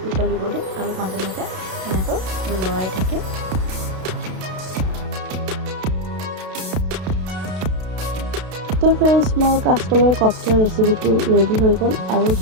উতলিব দিম আৰু মাজে মাজে এনেকৈ লৰাই থাকিম। তো ফ্ৰেণ্ডছ, মোৰ কাচকলৰ কপ্তা ৰেচিপিটো ৰেডি হৈ গ'ল। আৰু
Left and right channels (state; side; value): late; left; 32 ms